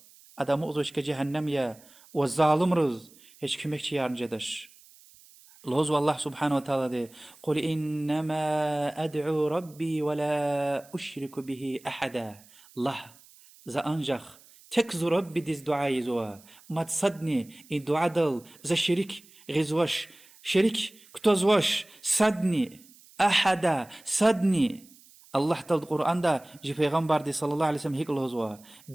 أدا مؤذوش كجهنم يا والظالم رز هيش كمك يارن جدش الهوز. الله سبحانه وتعالى قل إنما أدعو ربي ولا أشرك به أحدا. الله ذا أنجخ تكزو ربي ديز دعاي زوا ما تصدني إن دعا دل ذا شريك غزوش شريك كتوزوش صدني أحدا صدني. الله تل القرآن دا جي پیغمبر دي صلى الله عليه وسلم هيك الهزوا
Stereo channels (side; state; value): right; noise; hiss, 25 dB below the sound